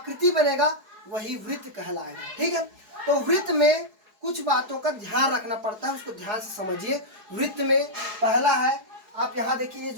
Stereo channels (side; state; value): left; late; 4.7 ms